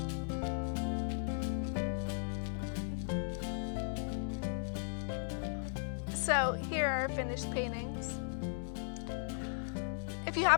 So here are our finished paintings. If you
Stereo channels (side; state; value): right; silent; digital silence